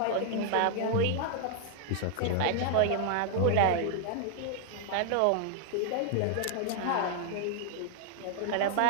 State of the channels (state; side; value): different; both; correlation 0.00